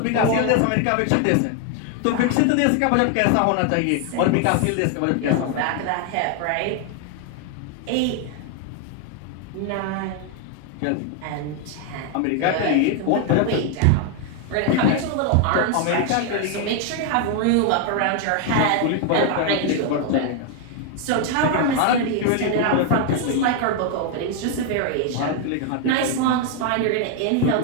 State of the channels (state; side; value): different; both; correlation 0.01